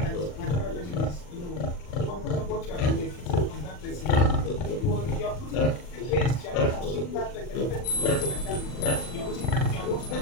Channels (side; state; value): right; late; 40 ms